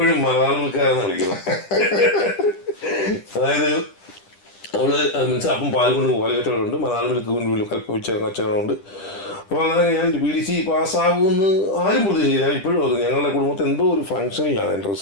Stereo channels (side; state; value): right; late; 10 ms